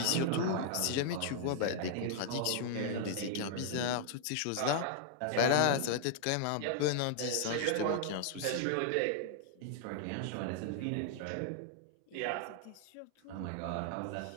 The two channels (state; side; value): different; both; correlation 0.00